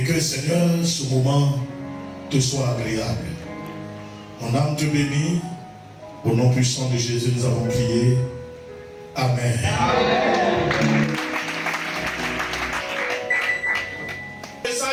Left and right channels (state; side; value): identical; both; correlation 1.00